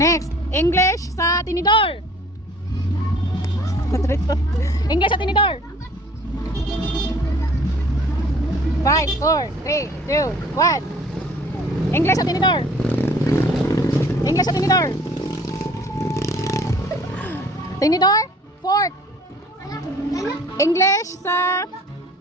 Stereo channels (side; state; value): both; normal; correlation 0.53